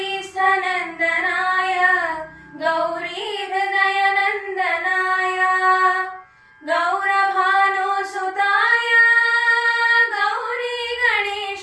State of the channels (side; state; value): both; identical; correlation 1.00